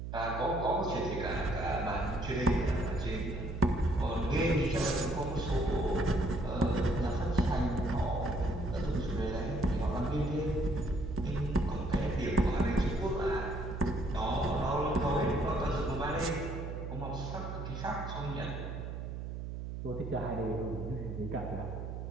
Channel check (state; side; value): noise; right; hum, 6 dB below the sound